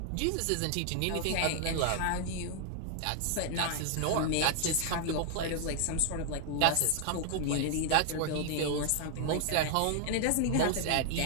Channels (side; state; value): both; different; correlation 0.00